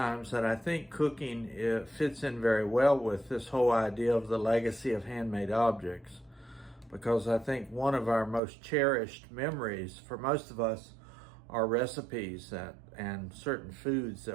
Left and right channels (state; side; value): drops out; left; at 8.4 s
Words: that I think cooking fits in very well with this whole idea of the legacy of handmade objects, because I think one of our most cherished memories for most of us are recipes and certain foods